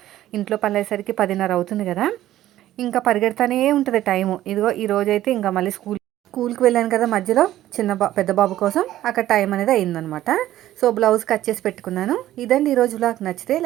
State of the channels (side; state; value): left; quieter; 13.7 dB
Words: ఇంట్లో పనులయ్యేసరికి 10:30 అవుతుంది కదా. ఇంకా పరిగెడతానే ఉంటుంది టైము. ఇదిగో ఈరోజైతే ఇంకా మళ్ళీ స్కూల్కి వెళ్ళాను కదా మధ్యలో పెద్ద బాబు కోసం అక్కడ టైం అనేది అయిందనమాట. సో బ్లౌజ్ కట్ చేసి పెట్టుకున్నాను. ఇదండి ఈరోజు వ్లాగ్. నచ్చితే